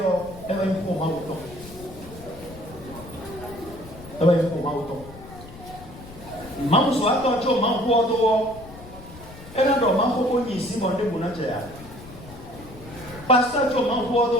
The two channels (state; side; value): noise; left; rumble, 17 dB below the sound